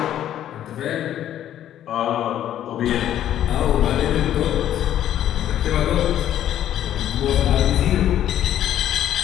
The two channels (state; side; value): quieter; right; 11.4 dB